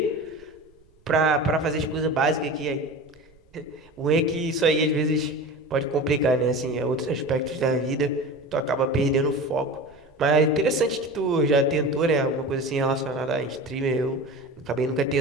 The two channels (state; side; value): noise; right; rumble, 30 dB below the sound